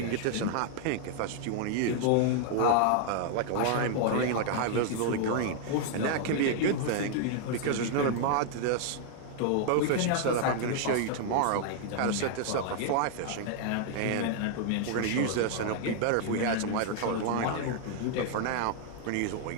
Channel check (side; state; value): both; different; correlation 0.00